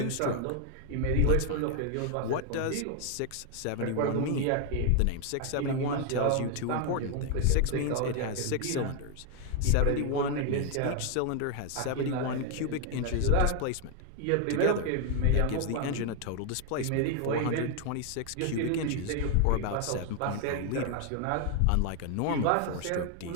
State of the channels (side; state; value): both; different; correlation 0.00